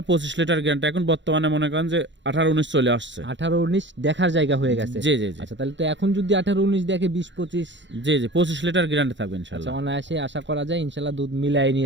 25 লিটার গ্যারান্টি। এখন বর্তমানে মনে করেন যে 18-19 চলে আসছে। 18-19 দেখার জায়গা হয়ে গেছে। জি জি জি। আচ্ছা, তাহলে তো এখন যদি 18-19 দেখে 20-25 জি জি 25 লিটার গ্যারান্টি থাকবে আচ্ছা, ইনশাল্লাহ। অনায়াসে আশা করা যায় ইনশাআল্লাহ দুধ মিলাই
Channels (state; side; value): late; left; 0.53 ms